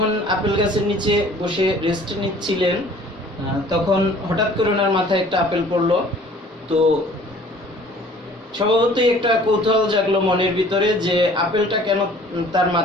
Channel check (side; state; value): both; normal; correlation 0.51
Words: আপেল গাছের নিচে বসে রেস্ট নিচ্ছিলেন, তখন হঠাৎ করে ওনার মাথায় একটা আপেল পড়লো। তো স্বভাবতই একটা কৌতূহল জাগলো মনের ভিতরে যে আপেলটা কেন তার